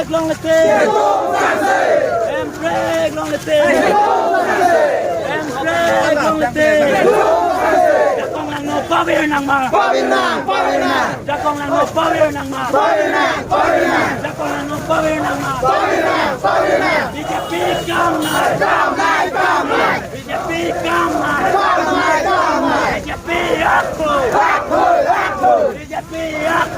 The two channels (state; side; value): identical; both; correlation 1.00